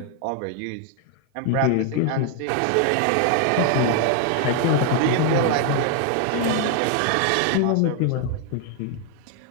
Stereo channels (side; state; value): both; different; correlation 0.00